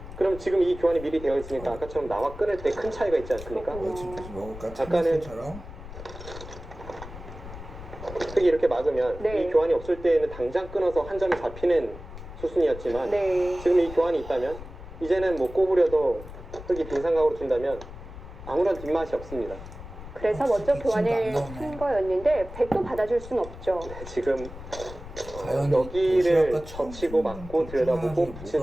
그럼 지금 이 교환이 미리 되어 있으니까 아까처럼 나와 끊을 때 큰 차이가 있지 않습니까? 그렇군요. 집에서 먹을까? 아까는 참치처럼? 흙이 이렇게 막으면 네. 이 교환이 없을 때에는 당장 끊어서 한 점이 잡히는 수순이었지만 네. 지금 이 교환이 있다면 이제는 뭐 꼬부려도 흙이 빈상각으로 둔다면 아무런 뒷맛이 없습니다. 그래서 먼저 진짜 교환을 안 나오네. 한 거였는데 백도 받아줄 순 없죠. 네, 지금 과연 여기를 도시락과 젖히고 막고 들여다보고 뭐가 붙인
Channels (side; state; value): left; noise; rumble, 13 dB below the sound